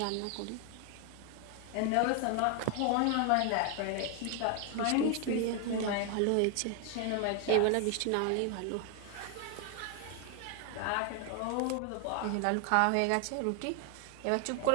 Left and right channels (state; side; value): different; both; correlation 0.00